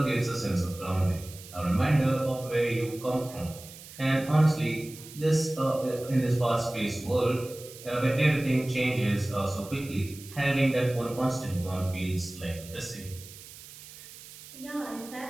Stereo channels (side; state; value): right; noise; hiss, 17 dB below the sound